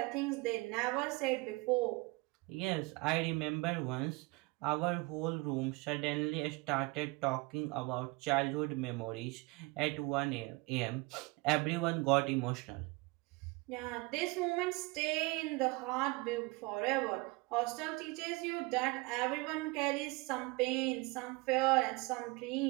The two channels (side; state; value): left; quieter; 24.9 dB